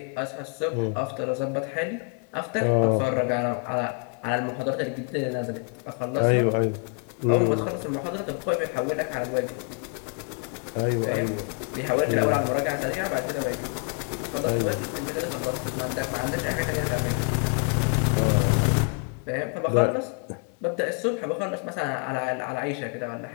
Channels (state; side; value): quieter; right; 36.5 dB